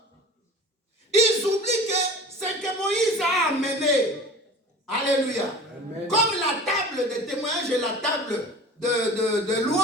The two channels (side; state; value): both; normal; correlation 0.39